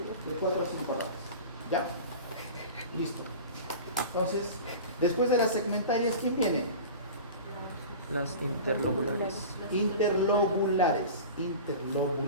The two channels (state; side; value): inverted; both; correlation -0.35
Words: De 4 a 5 ramas. ¿Ya? Listo. Entonces, después de las segmentarias, ¿quién viene? Las interlobulares. Interlobulares.